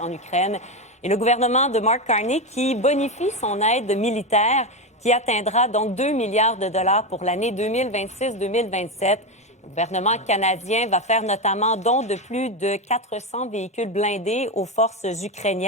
Ukraine. Et le gouvernement de Mark Carney qui bonifie son aide militaire qui atteindra donc 2 milliards de dollars pour l'année 2026-2027. Le gouvernement canadien va faire notamment don de plus de 400 véhicules blindés aux forces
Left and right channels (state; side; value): normal; both; correlation 0.13